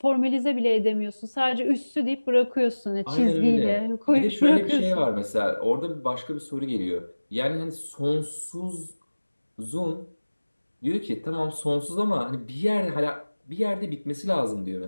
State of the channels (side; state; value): both; inverted; correlation -1.00